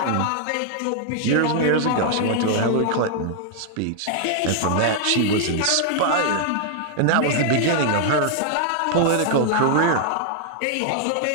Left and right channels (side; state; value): both; different; correlation -0.01